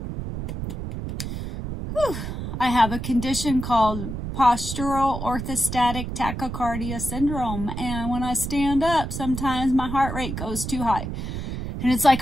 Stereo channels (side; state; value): right; noise; rumble, 6 dB below the sound